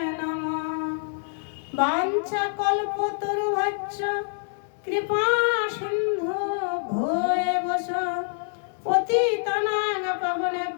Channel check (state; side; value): silent; right; digital silence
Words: नमः। वाञ्छाकल्पतरुभ्यश्च कृपा सिन्धु भूयश्च पतितानां